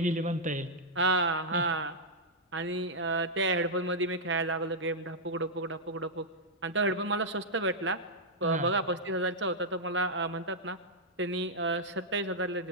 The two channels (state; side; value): normal; both; correlation -0.07